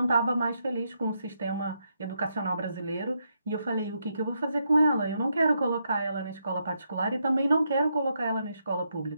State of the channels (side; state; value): both; inverted; correlation -0.80